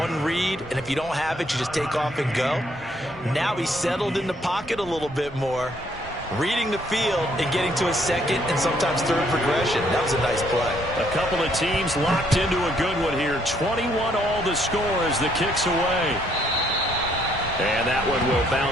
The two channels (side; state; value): both; normal; correlation 0.68